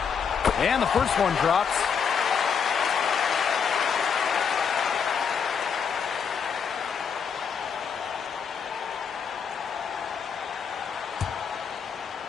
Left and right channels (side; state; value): right; quieter; 6.7 dB